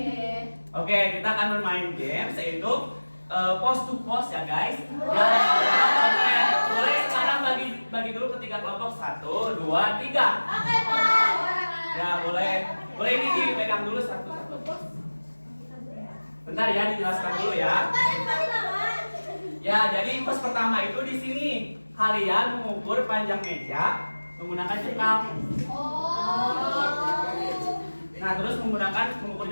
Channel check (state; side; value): inverted; both; correlation -1.00